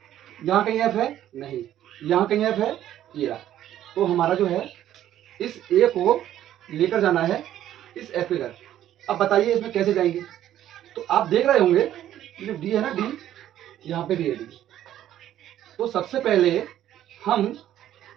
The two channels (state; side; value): quieter; left; 12.0 dB